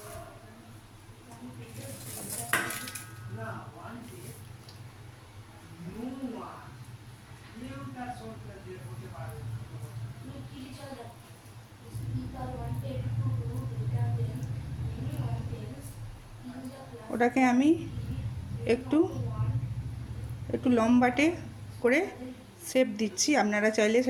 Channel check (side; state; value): both; identical; correlation 1.00